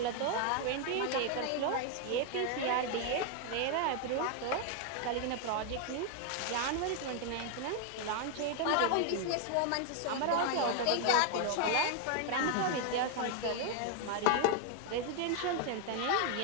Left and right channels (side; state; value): both; different; correlation 0.00